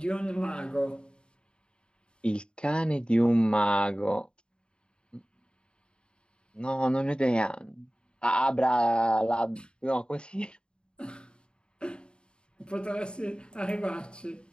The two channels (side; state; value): right; late; 0.051 ms